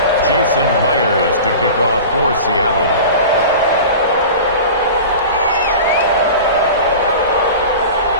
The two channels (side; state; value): both; inverted; correlation -0.35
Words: Jason Myers to kick off for Seattle.